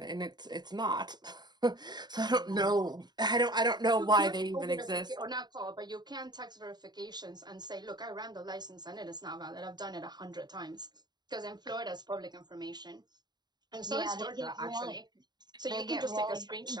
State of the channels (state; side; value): late; left; 0.20 ms